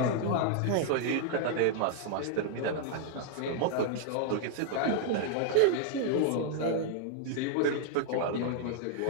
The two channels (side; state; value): both; different; correlation 0.00